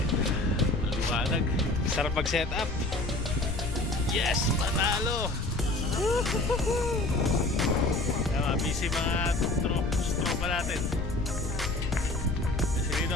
Maliwanag. Sarap mag-set up. Yes, panalo. Tama, busy mga tropa natin. Kasi dito,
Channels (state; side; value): noise; left; rumble, 4 dB below the sound